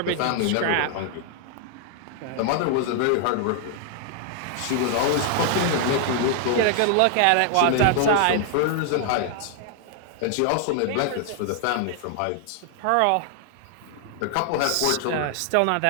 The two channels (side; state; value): both; different; correlation 0.00